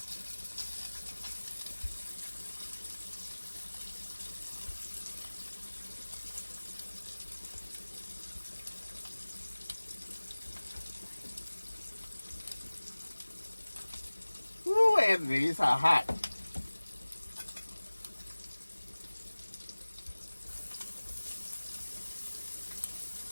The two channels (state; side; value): inverted; both; correlation -1.00